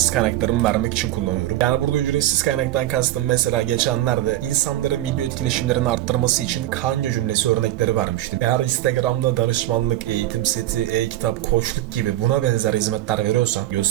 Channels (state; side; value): quieter; left; 14.4 dB